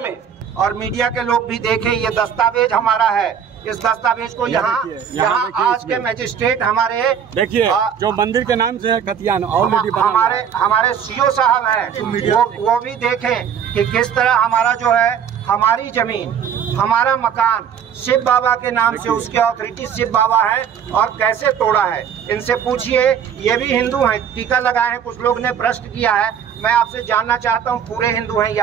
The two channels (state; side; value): quieter; left; 8.0 dB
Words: में? और मीडिया के लोग भी देखें, ये दस्तावेज हमारा है। इस दस्तावेज को यहाँ आज के मजिस्ट्रेट हमारे देखिए जो मंदिर के नाम से कतियान ऑलरेडी हमारे सीओ साहब हैं, वो भी देखें कि किस तरह हमारा जो है हमारी जमीन, हमारा मकान शिव बाबा के नाम से, उसके अथॉरिटी शिव बाबा है और कैसे तोड़ा है। इनसे पूछिए, ये भी हिंदू हैं, टीका लगाए हैं। कुछ लोग ने प्रश्न किया है, मैं आपसे जानना चाहता हूँ पूरे हिंदू हैं